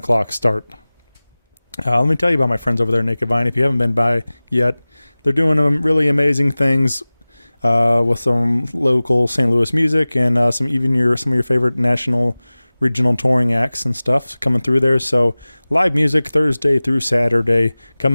start. Let me tell you about my friends over there at Naked Vine. If you haven't been by yet, they're doing really amazing things with some local St. Louis music and some of your favorite national regional touring acts and stuff coming through there. So live music Thursday through Saturday.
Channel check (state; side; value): inverted; both; correlation -0.99